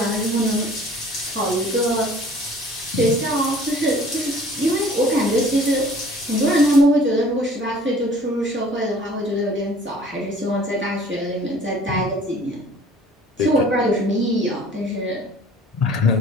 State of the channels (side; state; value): both; normal; correlation 0.51